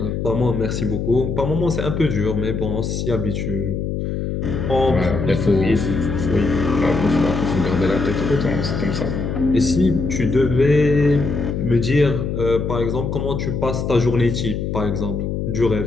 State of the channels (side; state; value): left; noise; hum, 3 dB below the sound